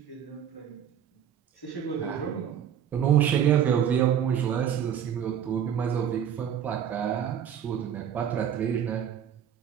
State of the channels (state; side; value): quieter; left; 9.1 dB